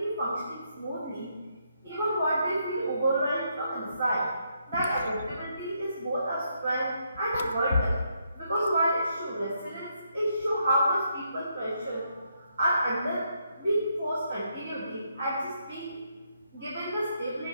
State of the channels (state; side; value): inverted; both; correlation -0.77